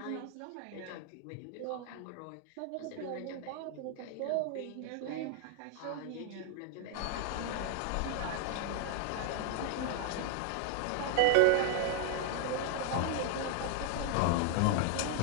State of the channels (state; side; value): different; both; correlation 0.00